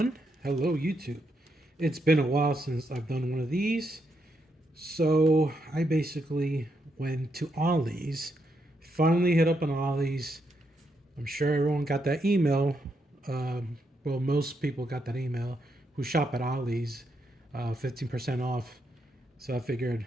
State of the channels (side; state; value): both; normal; correlation 0.80